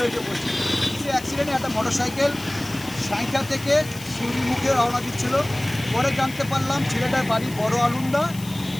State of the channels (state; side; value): noise; left; hiss, 16 dB below the sound